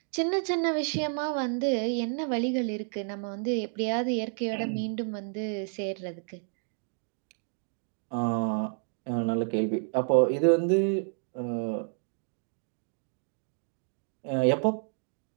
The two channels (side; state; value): left; silent; 58 dB below the other